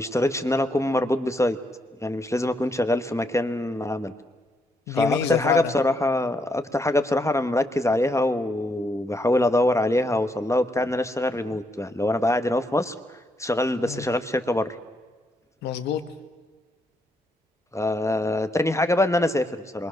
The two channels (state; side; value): normal; both; correlation 0.77